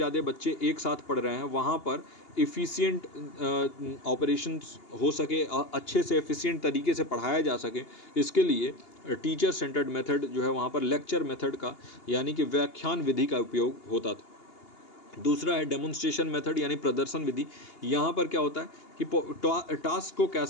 बच्चे एक साथ पढ़ रहे हैं, वहाँ पर इफ़िशियंट ऑपरेशंस हो सके, अच्छे से एफिशिएंट तरीके से पढ़ाया जा सके, इसके लिए टीचर सेंटर्ड मेथड जो है वहाँ पर लेक्चर मेथड का यानी कि व्याख्यान विधि का उपयोग होता था। दूसरा है डेमोन्स्ट्रेशन मेथड यानी प्रदर्शन विधि। यहाँ पर क्या होता है कि टास्क को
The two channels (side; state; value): right; late; 2.8 ms